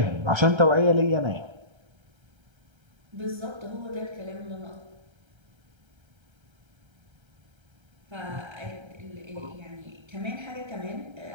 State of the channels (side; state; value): left; late; 1.3 ms